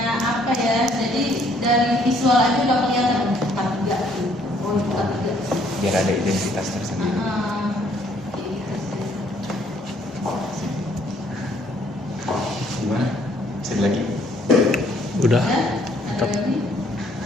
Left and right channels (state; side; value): normal; both; correlation 0.64